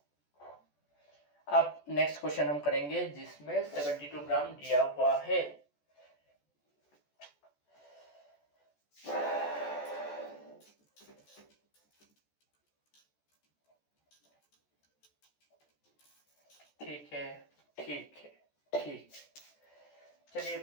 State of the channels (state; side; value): late; right; 14 ms